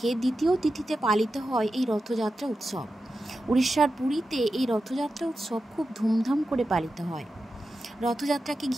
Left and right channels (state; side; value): normal; both; correlation 0.91